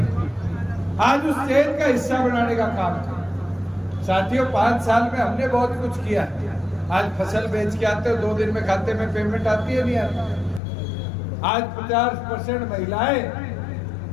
आज उस चेन का हिस्सा बनाने का काम है। साथियों 5 साल में हमने बहुत कुछ किया। आज फसल बेच के आते हो 2 दिन में खाते में पेमेंट आती है नहीं आती। आज 50% महिलाएं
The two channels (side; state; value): right; drops out; at 10.6 s